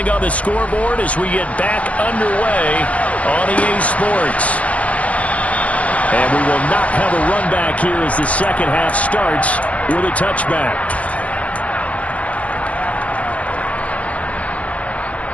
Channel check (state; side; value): late; right; 0.066 ms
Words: on the scoreboard as we get back underway on EA Sports. And we will not have a run back here as the second half starts with a touchback.